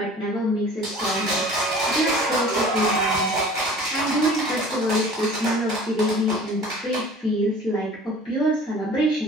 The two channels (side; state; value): both; normal; correlation 0.45